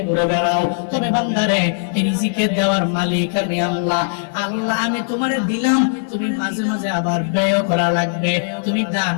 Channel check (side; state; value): right; silent; digital silence